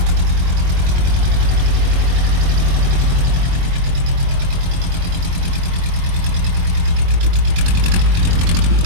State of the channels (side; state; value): left; late; 22 ms